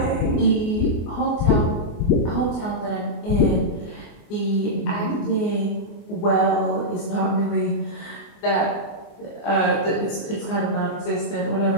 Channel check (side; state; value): right; late; 24 ms